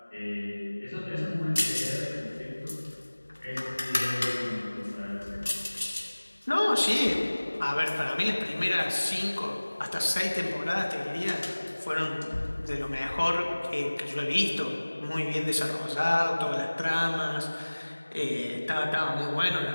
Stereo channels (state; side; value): inverted; both; correlation -1.00